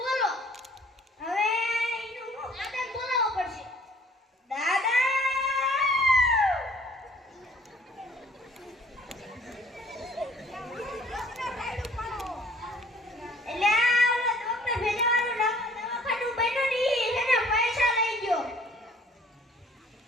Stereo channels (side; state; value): both; normal; correlation 0.56